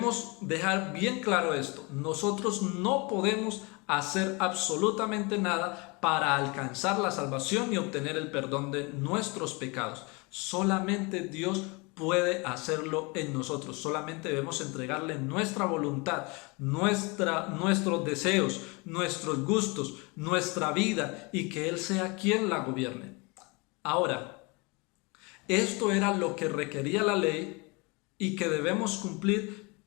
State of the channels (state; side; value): quieter; right; 28.2 dB